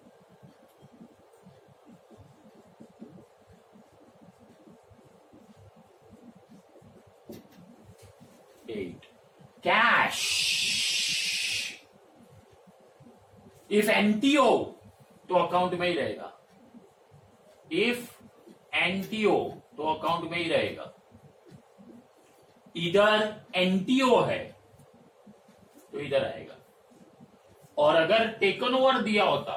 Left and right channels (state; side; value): identical; both; correlation 1.00